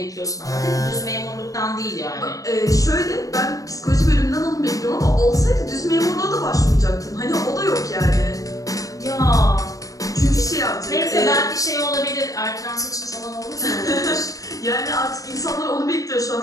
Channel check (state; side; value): late; right; 0.17 ms